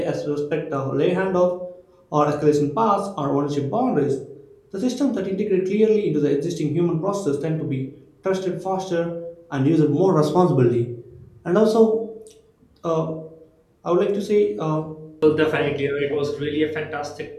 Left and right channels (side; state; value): both; identical; correlation 1.00